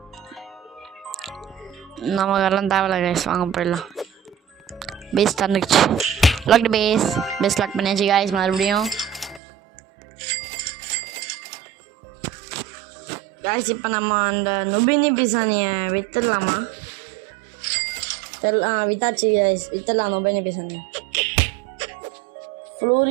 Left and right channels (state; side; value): drops out; left; at 9.4 s